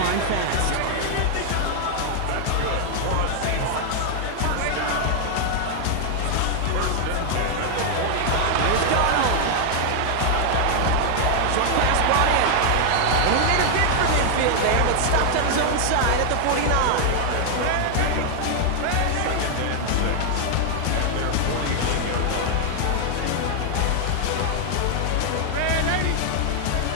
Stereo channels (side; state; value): both; different; correlation 0.00